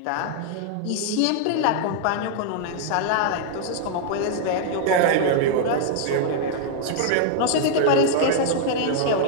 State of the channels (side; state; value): both; different; correlation -0.01